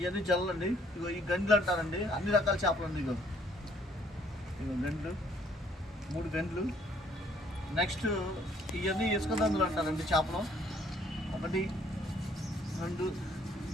జల్లలండి. ఇగో ఈ గండ్లు అంటారండి, అన్ని రకాల చేపలు అండి. ఇగో గండ్లు, 3 గండ్లు. నెక్స్ట్ ఇవన్నీ ఇసుక దందులు అంటారండి చేపలు. 1 2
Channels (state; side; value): normal; both; correlation 0.63